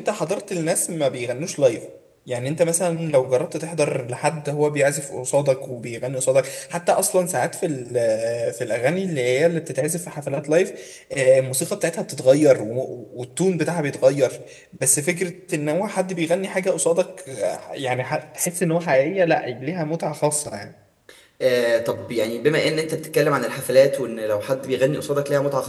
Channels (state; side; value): identical; both; correlation 1.00